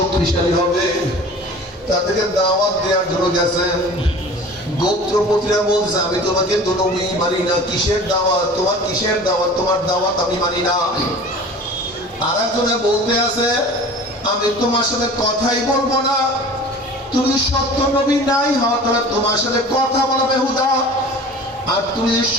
হবে। তাদেরকে দাওয়াত দেওয়ার জন্য গেছেন। গোত্রপতিরা বলছে, আমি তোমাকে তো নবী মানি না, কিসের দাওয়াত তোমার, কিসের দাওয়াত তোমার, দাওয়াত আমি মানি না। আর একজনে বলতে আছে, আমি তোমার সাথে কথাই বলবো না, তুমি সত্য নবী নাই হও, তাহলে তোমার সাথে কথা বলা বেহুদা। আর তুমি যদি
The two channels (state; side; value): normal; both; correlation 0.41